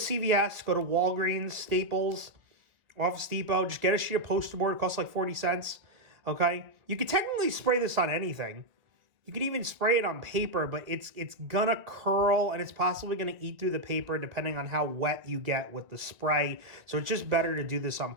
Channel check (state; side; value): late; left; 2.1 ms